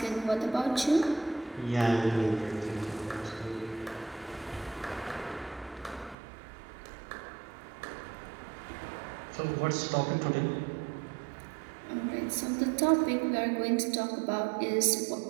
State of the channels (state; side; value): drops out; left; at 6.2 s